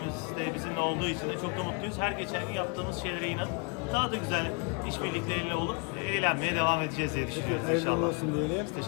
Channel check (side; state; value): right; quieter; 33.6 dB